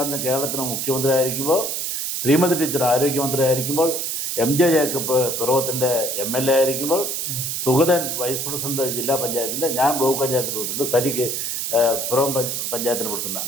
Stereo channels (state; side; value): noise; right; hiss, 2 dB below the sound